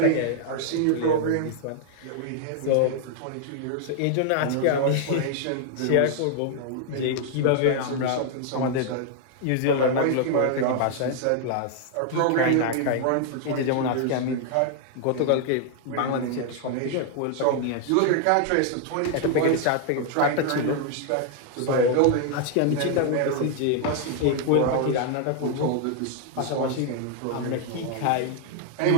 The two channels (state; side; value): different; both; correlation 0.00